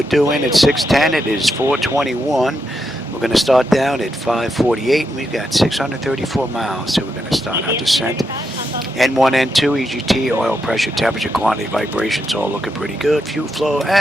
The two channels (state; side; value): normal; both; correlation 0.83